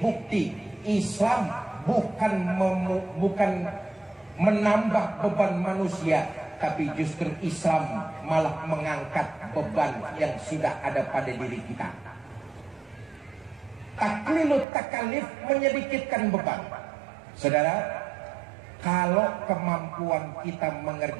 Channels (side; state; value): left; drops out; at 14.7 s